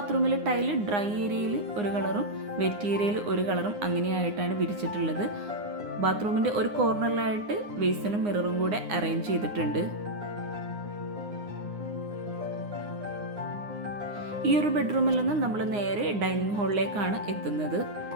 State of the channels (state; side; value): late; left; 9.7 ms